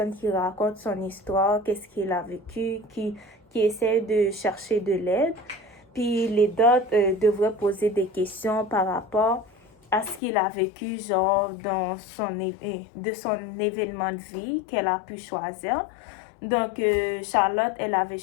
qui raconte son histoire, qu'est-ce qu'il a vécu, qui essaie de chercher de l'aide. Puis l'aidante devrait poser des questions par rapport à ce qu'il a vécu, genre de son événement de vie qu'elle a pu choisir. Charlotte, elle avait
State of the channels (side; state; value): right; drops out; at 10.2 s